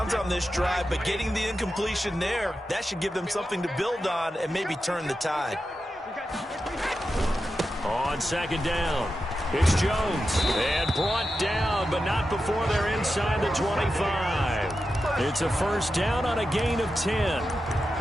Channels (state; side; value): normal; both; correlation 0.90